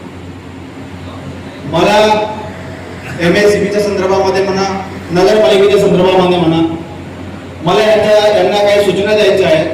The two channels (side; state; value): both; identical; correlation 1.00